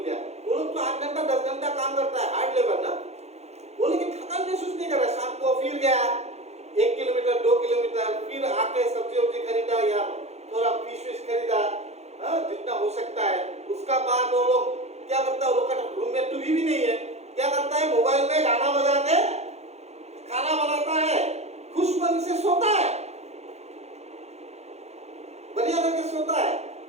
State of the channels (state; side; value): late; left; 0.31 ms